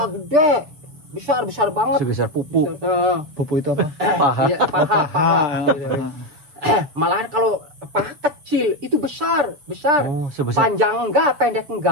gede, besar banget. Sebesar pupu. Pupu itu apa? Iya, paha. Malahan kalau paha kecil itu besar. Panjang enggak, pendek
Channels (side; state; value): left; late; 6.5 ms